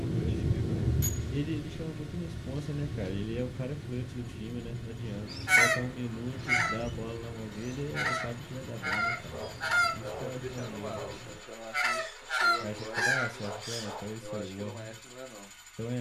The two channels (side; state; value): both; identical; correlation 1.00